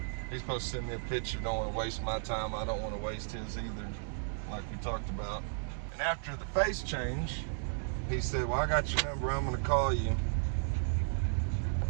He's supposed to send me a picture. Don't want to waste my time. I don't want to waste his either, like we talked about. And after the face change, he said, well, I got your number. I'm going to call you.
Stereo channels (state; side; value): silent; left; digital silence